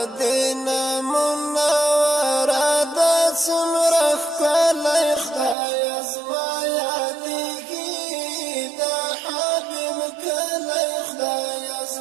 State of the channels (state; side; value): drops out; left; at 5.6 s